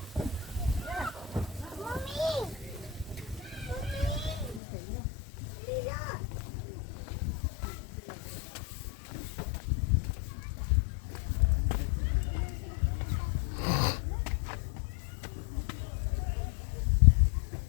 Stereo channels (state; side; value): drops out; right; at 4.6 s